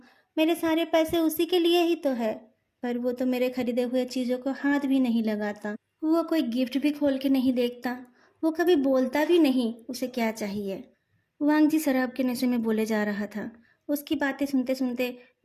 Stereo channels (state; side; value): identical; both; correlation 1.00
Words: मेरे सारे पैसे उसी के लिए ही तो है, पर वो तो मेरे खरीदे हुए चीज़ों को हाथ भी नहीं लगाता। वो कोई गिफ्ट भी खोल के नहीं देखता। वो कभी बोलता भी नहीं उसे क्या चाहिए। वांग जी शराब के नशे में बोले जा रहा था। उसकी बातें सुनते सुनते